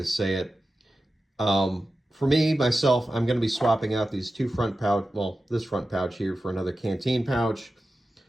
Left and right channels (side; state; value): both; normal; correlation 0.93